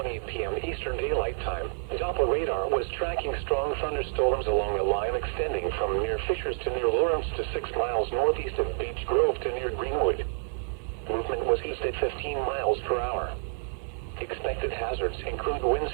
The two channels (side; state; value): left; silent; digital silence